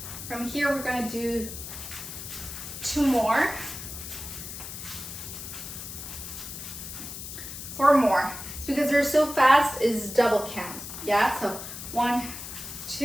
From here we're gonna do 2 more, 4 more. It's because they're so fast is double count. Yeah, so 1,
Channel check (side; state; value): left; noise; hiss, 9 dB below the sound